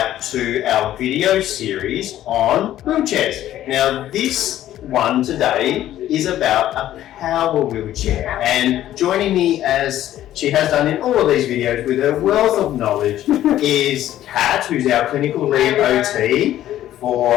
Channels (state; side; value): quieter; right; 12.8 dB